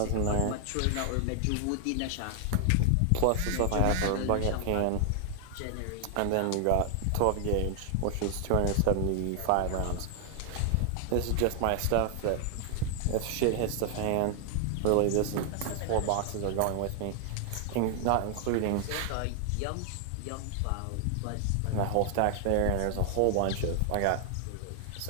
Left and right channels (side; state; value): both; different; correlation 0.00